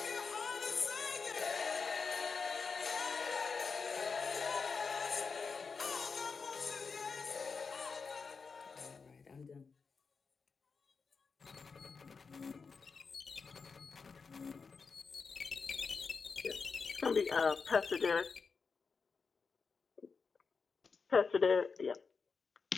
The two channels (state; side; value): quieter; right; 5.1 dB